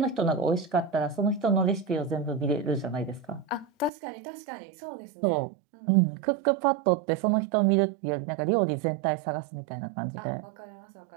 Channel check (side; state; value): left; drops out; at 3.9 s